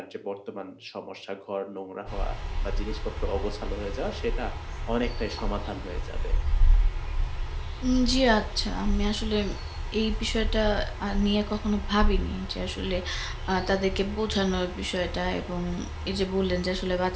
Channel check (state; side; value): identical; both; correlation 1.00